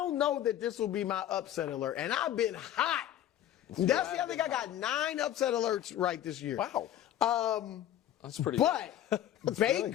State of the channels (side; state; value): right; quieter; 11.8 dB